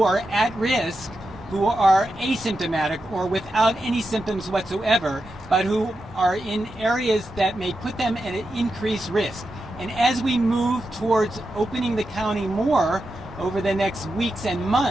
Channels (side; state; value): both; normal; correlation 0.88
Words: are at risk, who are asymptomatic or without any symptoms whatsoever, but who are in areas that may put them at an increased risk. And as we move towards opening the county more over the next weeks and